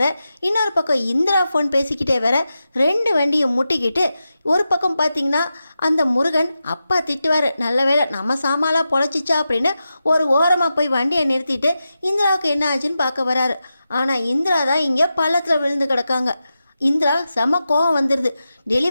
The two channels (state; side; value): inverted; both; correlation -0.91